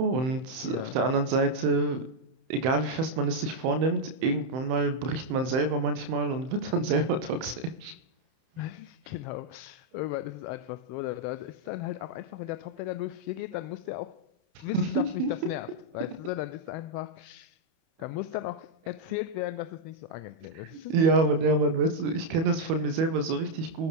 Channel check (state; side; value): late; left; 31 ms